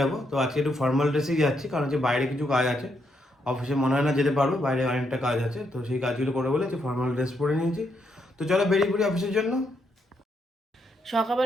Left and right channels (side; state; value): both; normal; correlation 0.78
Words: তো আজকে একটু ফর্মাল ড্রেসেই যাচ্ছি, কারণ হচ্ছে বাইরে কিছু কাজ আছে, অফিসে মনে হয় না যেতে পারবো, বাইরে অনেকটা কাজ আছে, তো সেই কাজগুলো করে বলে ফর্মাল ড্রেস পরে নিয়েছি। তো চলো বেরিয়ে পড়ি অফিসের জন্য।